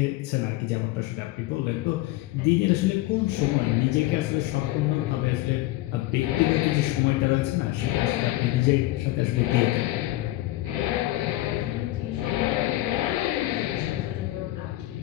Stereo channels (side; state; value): right; quieter; 17.2 dB